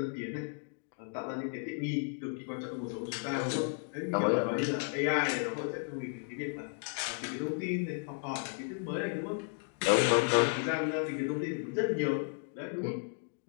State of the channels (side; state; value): right; silent; 55 dB below the other